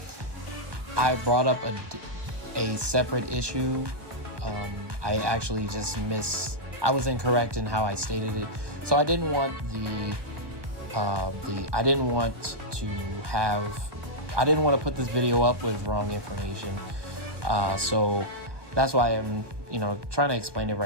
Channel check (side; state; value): left; late; 1.2 ms